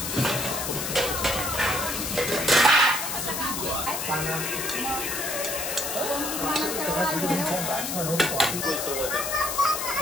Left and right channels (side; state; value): left; noise; hiss, 3 dB below the sound